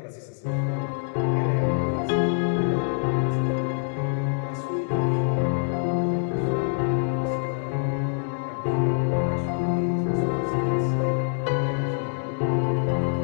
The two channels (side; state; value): right; silent; digital silence